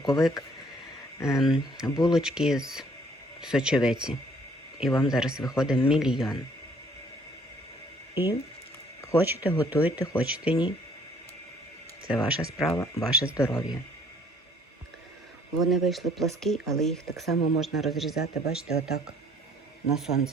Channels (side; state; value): both; normal; correlation 0.60